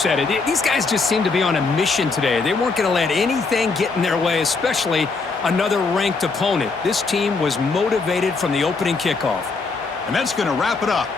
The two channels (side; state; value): right; quieter; 4.2 dB